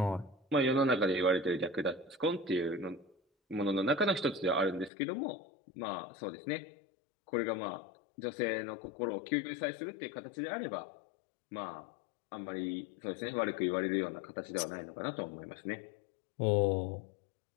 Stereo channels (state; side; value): drops out; right; at 4.9 s